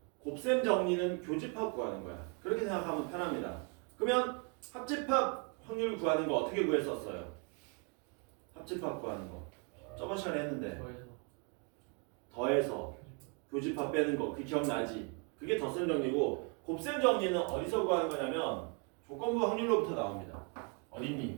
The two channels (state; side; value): quieter; left; 36.2 dB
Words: 곱셈 정리는 교집합 구하는 거야. 그렇게 생각하면 편합니다. 그러면 합집합 확률 구하는 거 어떻게 구했었어요? 합집합 구하는 거 저번 시간에 했는데 더해서 교집합 빼는 거 그 기억나지? 그게 덧셈 정리고 곱셈 정리는 어디서 구하는 거냐면 조건부 확률로부터 나옵니다.